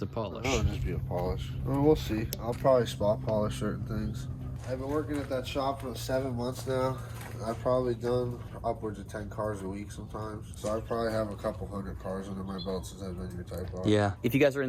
polish? Oh, just be a polish. Well, we'll see. I'll probably spot polish certain things. I've been working at that shop for 7 months now. I've probably done upwards of 10 cars a week sometimes. So I probably have a couple hundred cars under my belt since I've been your Type R. Yeah. If you guys are in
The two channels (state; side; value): identical; both; correlation 1.00